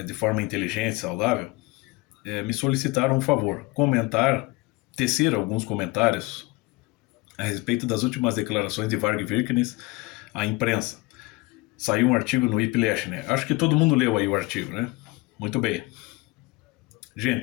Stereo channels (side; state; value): right; quieter; 23.0 dB